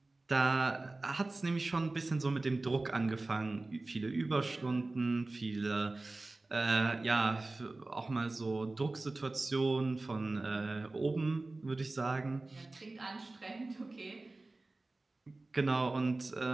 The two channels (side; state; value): left; quieter; 3.1 dB